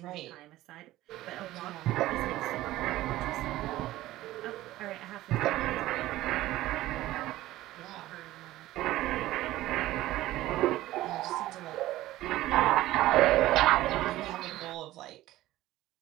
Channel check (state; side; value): quieter; left; 15.9 dB